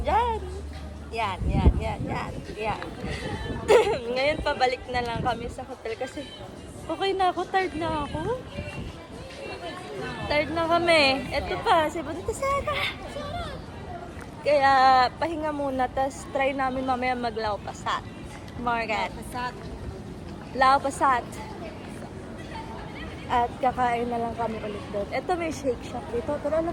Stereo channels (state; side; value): identical; both; correlation 1.00